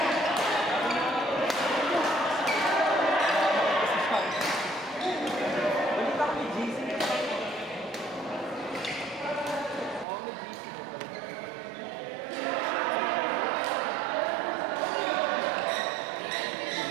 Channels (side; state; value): left; drops out; at 10.1 s